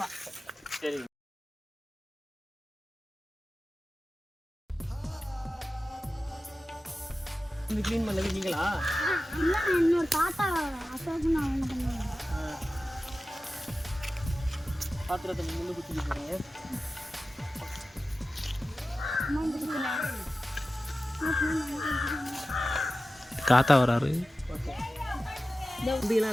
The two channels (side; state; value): both; normal; correlation 0.95